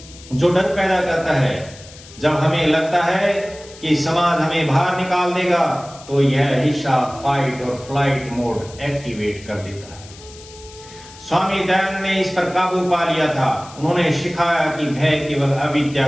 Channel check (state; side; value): noise; left; hiss, 20 dB below the sound